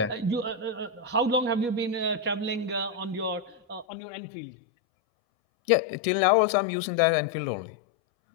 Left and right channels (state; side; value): drops out; right; at 3.9 s